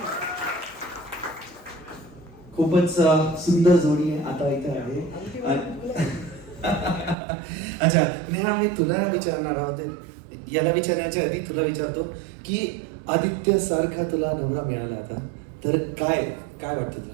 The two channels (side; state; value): left; drops out; at 7.2 s